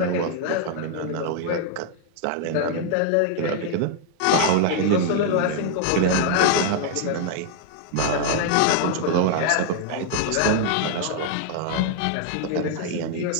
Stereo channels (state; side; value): different; both; correlation 0.00